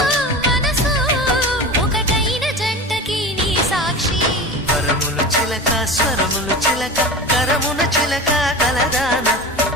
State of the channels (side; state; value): both; normal; correlation 0.30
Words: స్వరములు చిలక కరమున చిలక కలదాన